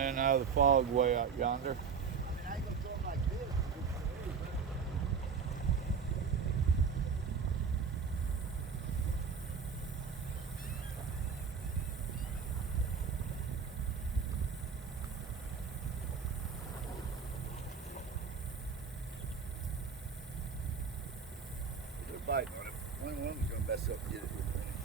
out of the fog way out yonder. I mean, I ain't gonna throw them like this. They're biting on it. One of them's gonna mess up and get it here in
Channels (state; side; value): quieter; left; 5.9 dB